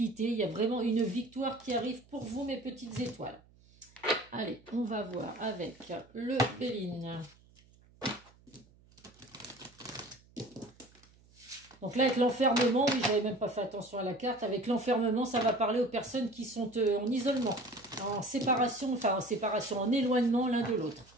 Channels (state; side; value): noise; right; hum, 28 dB below the sound